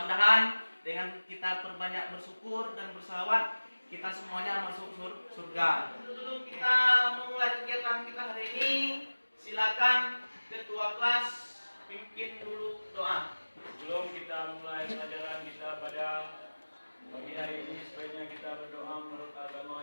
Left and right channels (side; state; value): both; inverted; correlation -1.00